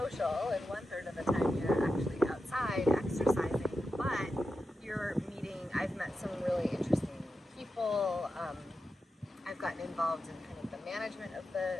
and 1/3 of the time you're actually outside exercising, but you're meeting. I've met some really interesting people. I've gotten involved in kind of the management of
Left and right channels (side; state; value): both; normal; correlation 0.89